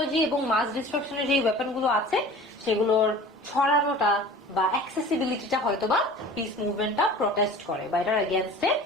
এবং মাস ডিস্ট্রাকশনের যে ওয়েপন গুলো আছে সেগুলোর ছড়ানোটা বা অ্যাক্সেসিবিলিটিটা হয়তো বা পিস মুভমেন্টটা প্রটেস্ট করে বা এটার এগেনস্টে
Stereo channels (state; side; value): normal; both; correlation 0.42